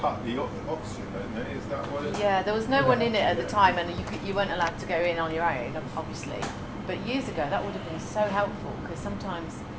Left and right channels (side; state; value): both; identical; correlation 1.00